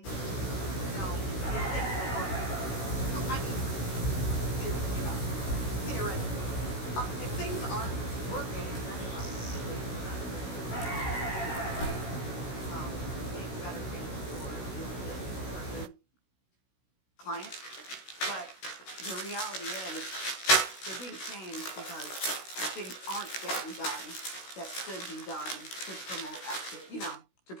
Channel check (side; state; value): right; late; 16 ms